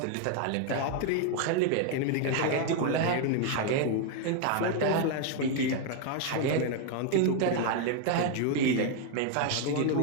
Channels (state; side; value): different; both; correlation 0.01